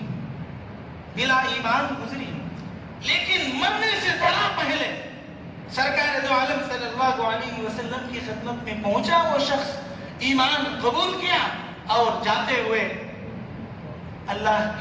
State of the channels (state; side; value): identical; both; correlation 1.00